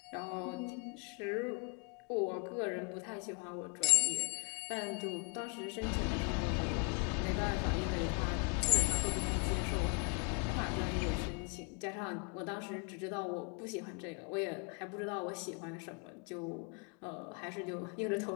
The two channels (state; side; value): quieter; right; 31.2 dB